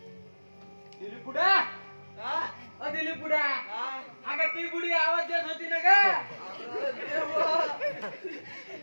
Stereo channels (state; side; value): inverted; both; correlation -1.00